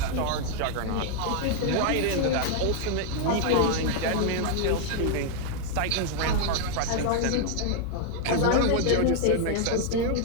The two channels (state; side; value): different; both; correlation 0.00